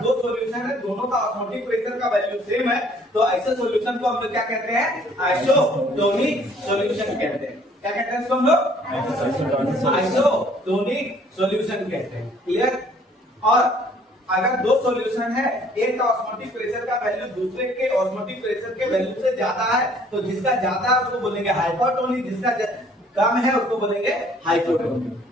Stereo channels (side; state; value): both; normal; correlation 0.59